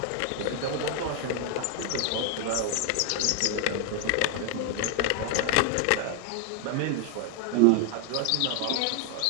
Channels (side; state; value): both; different; correlation 0.00